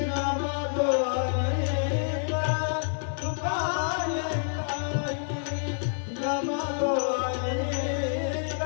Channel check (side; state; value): right; silent; digital silence